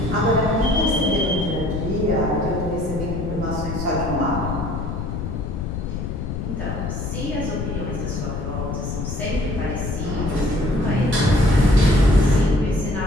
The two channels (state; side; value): noise; left; rumble, 4 dB below the sound